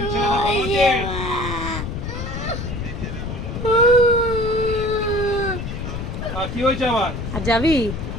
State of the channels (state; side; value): noise; left; rumble, 6 dB below the sound